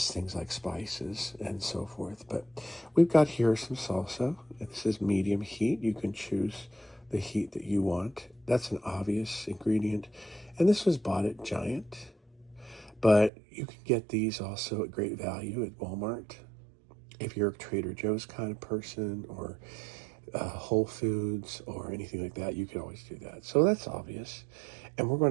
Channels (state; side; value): drops out; left; at 13.3 s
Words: things like spices and so forth. But we've got here some salsa. This is medium heat. You can choose the heat that you want. That's an obvious ingredient. And this was bought at Giant. But you can get these also at great value at Walmart. If you're a Trader Joe's kind of person, or Whole Foods or anything like that, you can always do that. So that's obvious. And we're